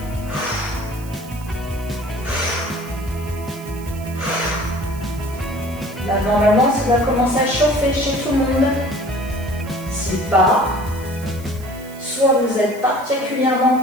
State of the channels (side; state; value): right; noise; hiss, 20 dB below the sound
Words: Là, normalement, ça va commencer à chauffer chez tout le monde. Si pas, soit vous êtes particulièrement